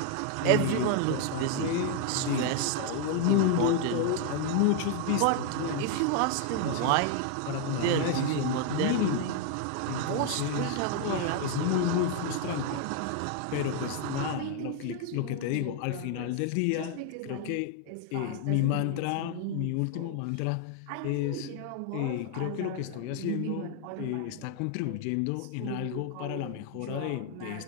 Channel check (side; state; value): both; different; correlation 0.00